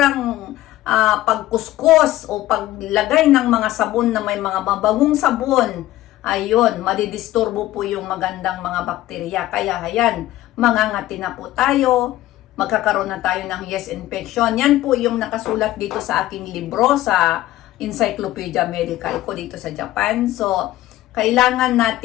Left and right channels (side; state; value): right; quieter; 15.3 dB